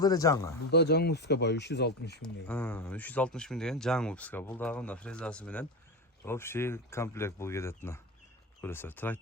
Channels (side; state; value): both; normal; correlation 0.20